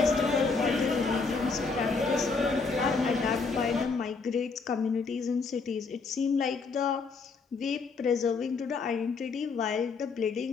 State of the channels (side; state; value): right; quieter; 4.6 dB